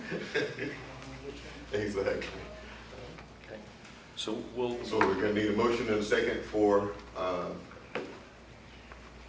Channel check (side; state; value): both; identical; correlation 1.00